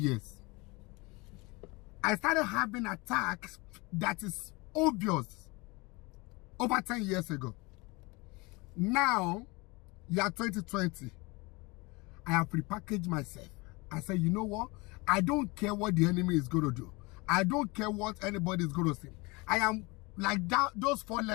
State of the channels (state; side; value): quieter; right; 25.5 dB